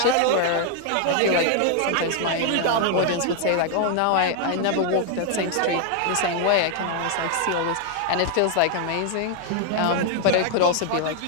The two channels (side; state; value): both; different; correlation 0.00